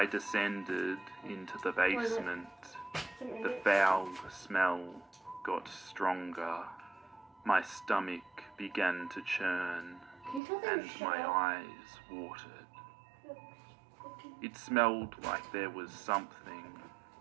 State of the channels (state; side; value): drops out; left; at 10.4 s